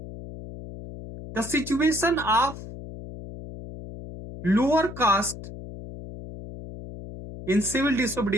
the situation of lower caste in civil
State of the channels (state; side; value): noise; left; hum, 12 dB below the sound